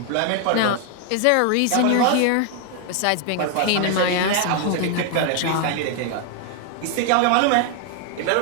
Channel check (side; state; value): both; different; correlation 0.00